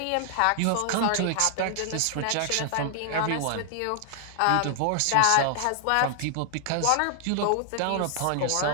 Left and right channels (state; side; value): different; both; correlation 0.00